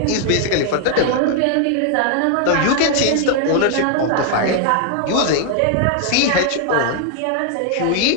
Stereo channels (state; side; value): different; both; correlation 0.00